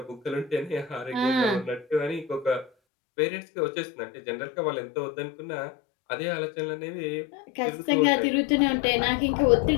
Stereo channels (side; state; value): right; drops out; at 2.7 s